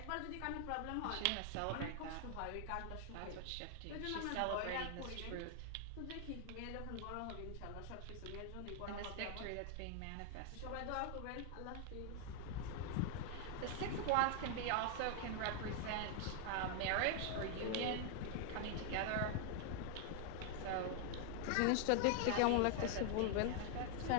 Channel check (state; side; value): different; both; correlation 0.00